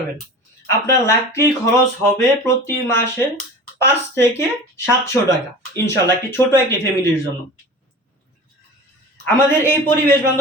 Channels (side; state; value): both; normal; correlation 0.36